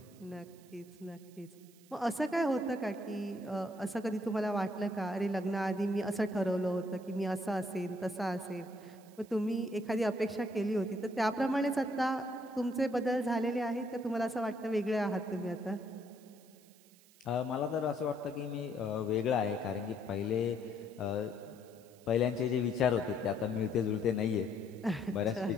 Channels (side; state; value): right; noise; hiss, 26 dB below the sound